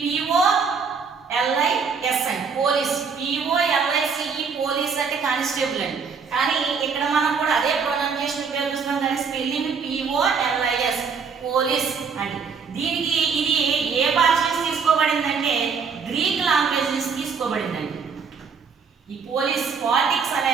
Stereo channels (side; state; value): left; quieter; 5.7 dB